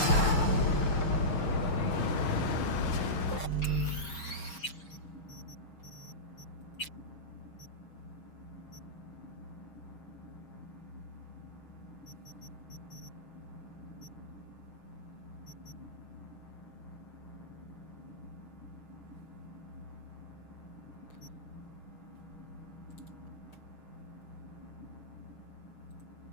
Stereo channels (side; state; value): right; late; 6.4 ms